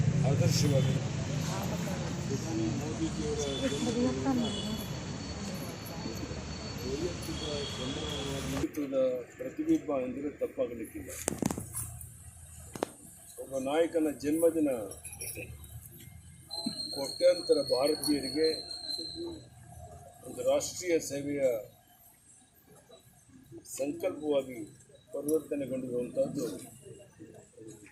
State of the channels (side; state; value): both; identical; correlation 1.00